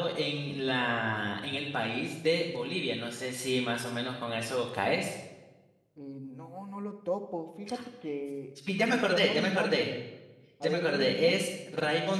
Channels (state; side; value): identical; both; correlation 1.00